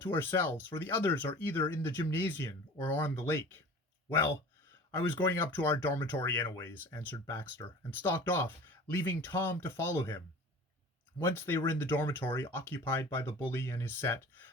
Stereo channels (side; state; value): both; normal; correlation 0.41